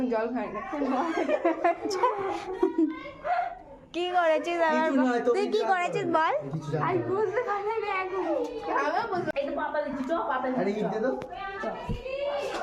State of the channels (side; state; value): both; identical; correlation 1.00